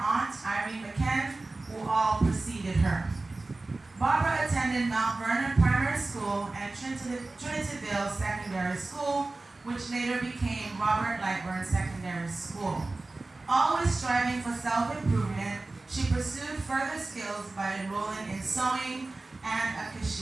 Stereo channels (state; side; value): quieter; left; 3.2 dB